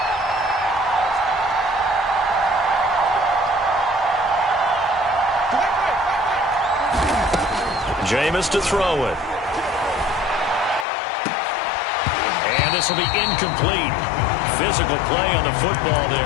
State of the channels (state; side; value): drops out; right; at 10.9 s